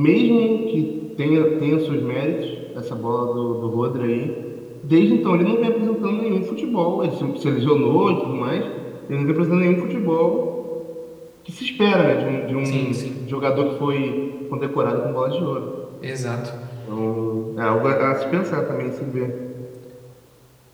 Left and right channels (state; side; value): identical; both; correlation 1.00